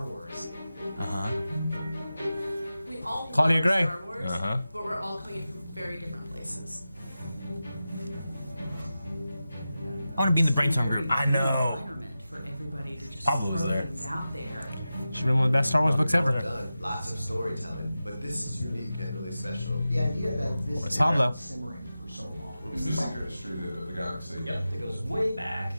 Wars. We all Claudia love Gray. Star Wars, but we're all coming from very different places. I want to be in the brainstorm group. I know. Environment for everybody to just Pablo was throw there. things out there. She's been one of the best Star Wars books ever. Done lots of storytelling, but this is unique and really special. The idea that this thing Pablo. has been simmering for so long. It's the secret history of the galaxy. Yep, it goes way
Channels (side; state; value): both; inverted; correlation -0.94